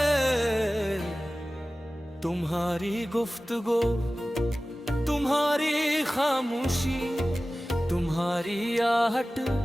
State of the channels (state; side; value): normal; both; correlation 0.96